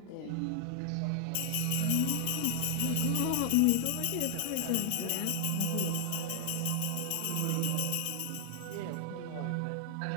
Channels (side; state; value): both; different; correlation 0.00